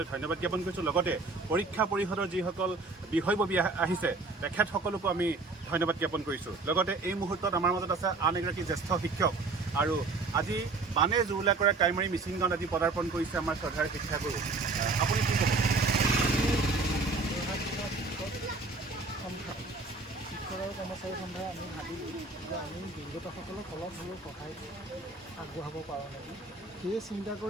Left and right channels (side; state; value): left; quieter; 3.7 dB